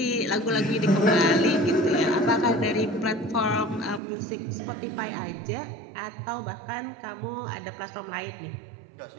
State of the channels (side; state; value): left; drops out; at 4.0 s